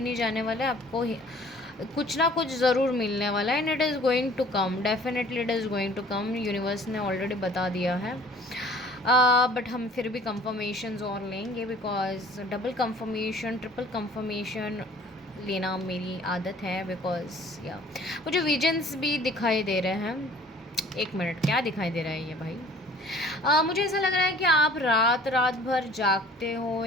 नहीं जाने वाला है, आपको कुछ ना कुछ ज़रूर मिलने वाला है। And it is going to come, definitely it is going to come. Universe ने ऑलरेडी बता दिया है बट हम फिर भी कंफर्मेशंस और लेंगे because double confirmation triple confirmation लेना मेरी आदत है। बिकॉज या मुझे विजन्स भी दिखाई दे रहे हैं। एक मिनट, क्या दिखाई दे रहा है ये भाई? मुझे ऐसा लग रहा है कि आप रात भर जागते हो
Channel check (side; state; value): both; normal; correlation 0.52